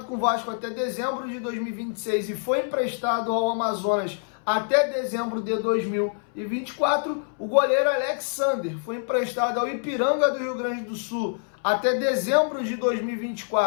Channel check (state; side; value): silent; right; 61 dB below the other